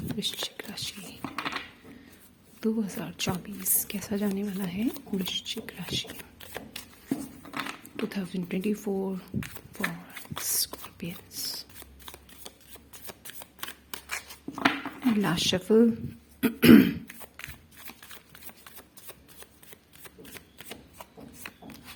वृश्चिक राशि, 2024 कैसा जाने वाला है वृश्चिक राशि 2024 for scorpions. Last shuffle.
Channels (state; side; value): identical; both; correlation 1.00